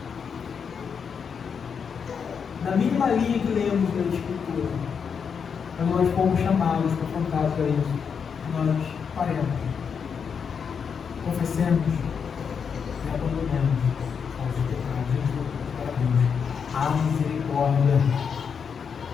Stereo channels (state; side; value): quieter; right; 6.6 dB